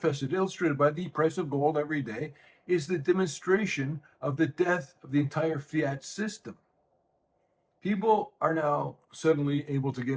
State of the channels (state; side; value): identical; both; correlation 1.00